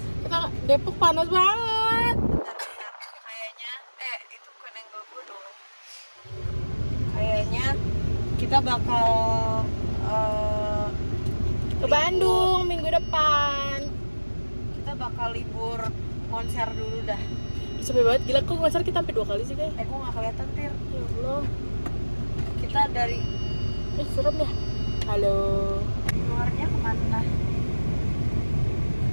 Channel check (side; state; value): both; inverted; correlation -1.00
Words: kita Depok panas banget. Kayaknya, itu koneng gue dong. Kayaknya kita bakal Ke Bandung minggu depan. kita bakal libur konser dulu dah. Sepi banget, gila kok konser kita sampai 2 kali sih kayak. Gue nggak kelihatan tir. Ya Allah. Kita dari Serem ya. Halo. luarnya kemana?